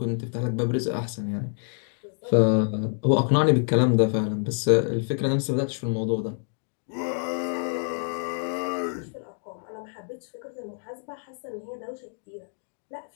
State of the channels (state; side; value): silent; right; 60 dB below the other